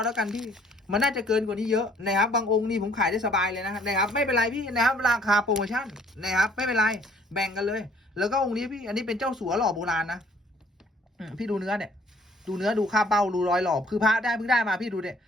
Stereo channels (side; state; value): both; normal; correlation 0.59